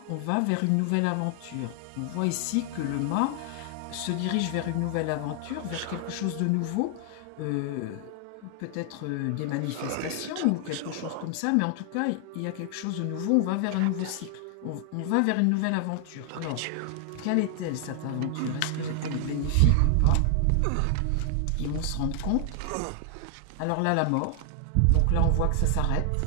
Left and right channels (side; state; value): both; different; correlation 0.00